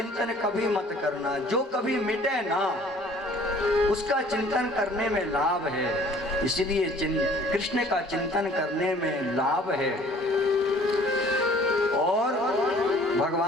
कभी मत करना। जो कभी मिटे ना, उसका चिंतन करने में लाभ है। इसलिए कृष्ण का चिंतन करने में लाभ है। और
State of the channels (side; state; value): both; normal; correlation 0.53